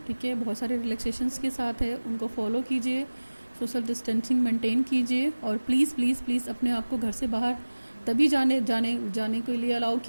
ठीक है, बहुत सारे रिलैक्सेशंस के साथ है, उनको फॉलो कीजिए, सोशल डिस्टेंसिंग मेंटेन कीजिए और प्लीज़ प्लीज़ प्लीज़ अपने आप को घर से बाहर तभी जाने के लिए अलाउ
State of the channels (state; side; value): inverted; both; correlation -1.00